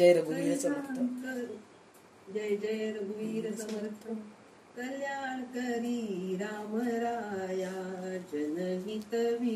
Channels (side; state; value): both; identical; correlation 1.00